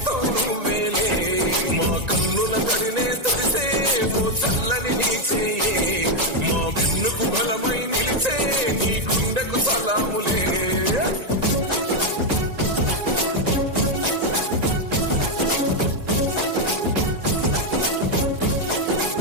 నువ్వేలే. మా కన్నుల తడినే తడిసే ఓ చల్లని నీ చేయే, మా వెన్నుకు బలమై నిలిచే నీ గుండెకు సలాములే.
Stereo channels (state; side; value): late; left; 1.9 ms